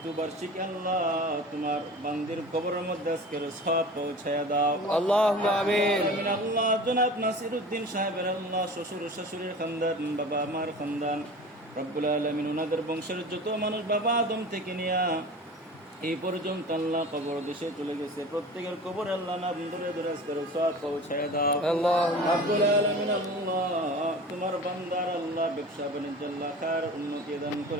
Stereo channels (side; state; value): both; normal; correlation 0.37